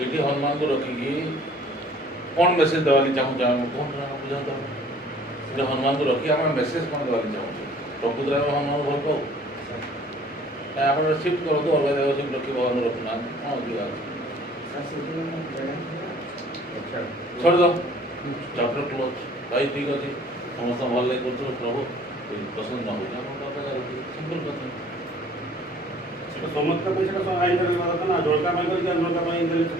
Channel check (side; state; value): both; normal; correlation 0.53